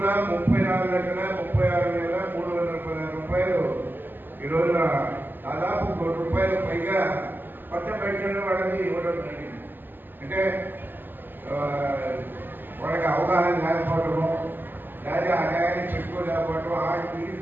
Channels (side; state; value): left; late; 0.092 ms